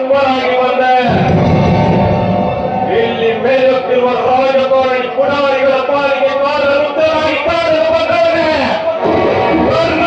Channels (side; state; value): both; identical; correlation 1.00